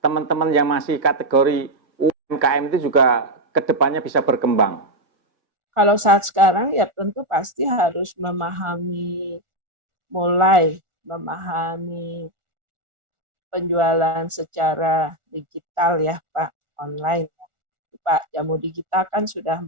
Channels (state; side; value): late; left; 1.4 ms